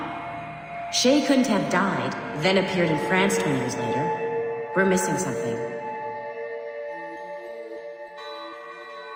Shay couldn't have died, then appeared in France 20 years later. We're missing something.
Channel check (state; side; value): identical; both; correlation 1.00